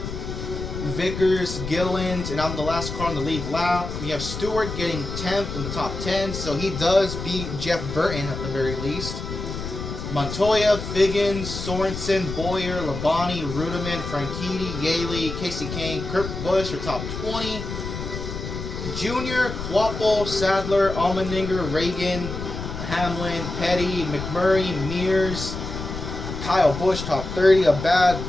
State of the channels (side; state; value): left; noise; rumble, 7 dB below the sound